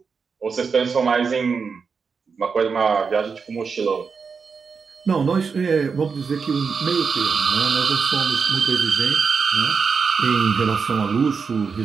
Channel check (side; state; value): left; quieter; 5.5 dB